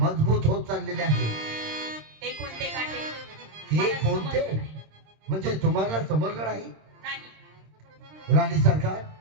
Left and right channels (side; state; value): left; late; 26 ms